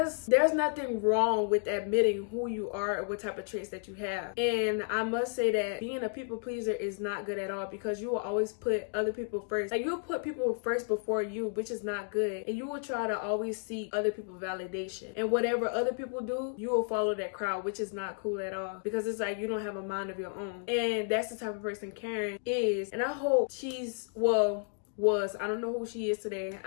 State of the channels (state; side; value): silent; right; 56 dB below the other